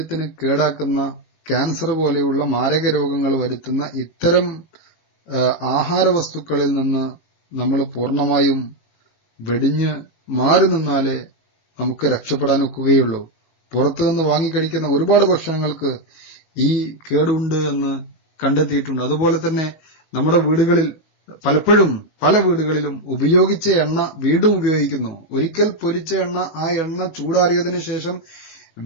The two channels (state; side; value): late; right; 19 ms